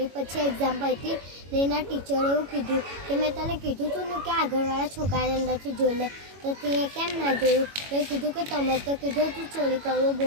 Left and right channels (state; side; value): late; left; 21 ms